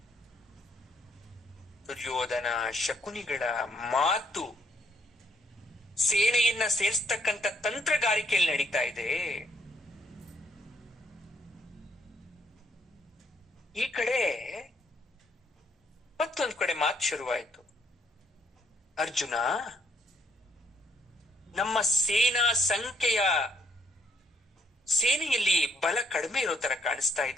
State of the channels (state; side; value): normal; both; correlation 0.70